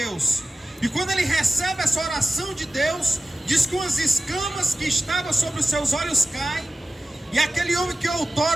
E quando ele recebe essa oração de Deus, diz que umas escamas que estavam sobre os seus olhos caem, e aquele homem que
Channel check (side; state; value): both; normal; correlation 0.94